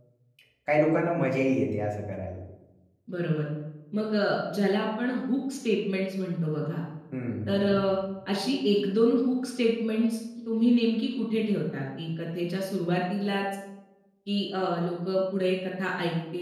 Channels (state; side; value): identical; both; correlation 1.00